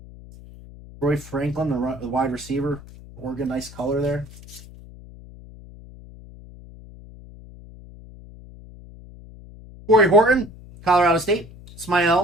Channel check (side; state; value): left; noise; hum, 19 dB below the sound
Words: Troy Franklin, the wide receiver. Oregon, nice color there. Corey Horton, Colorado State.